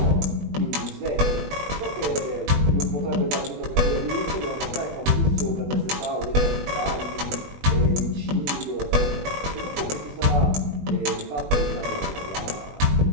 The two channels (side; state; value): left; late; 20 ms